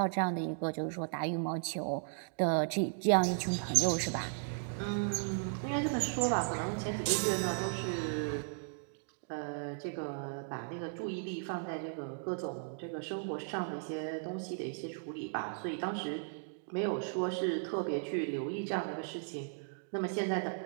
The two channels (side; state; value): left; silent; digital silence